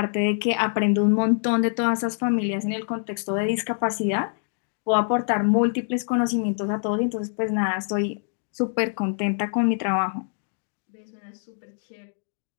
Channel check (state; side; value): silent; right; 62 dB below the other